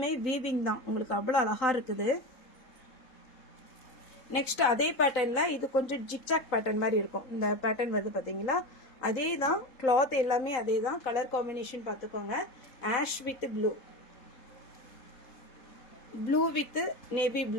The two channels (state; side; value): late; right; 3.7 ms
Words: வீவிங் தான், உங்களுக்கு அவ்வளோ அழகாக இருக்குது. நெக்ஸ்ட் அதே பேட்டர்னில் இது கொஞ்சம் ஜிக்ஜாக் பேட்டர்ன் மாதிரி இருக்கும். இந்த பேட்டர்ன் வந்து பார்த்தீங்களா அதே தான், கிளாத் எல்லாமே அதே தான். கலர் காம்பினேஷன் பார்த்துக்கோங்க. Ash with blue, blue with navy